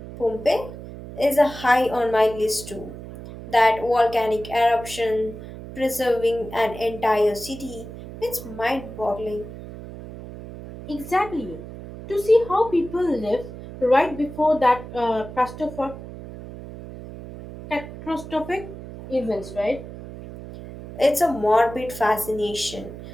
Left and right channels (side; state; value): right; noise; hum, 13 dB below the sound